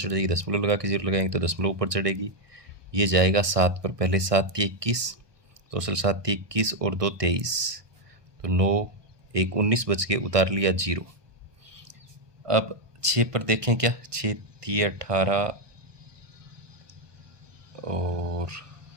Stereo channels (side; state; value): left; late; 1.2 ms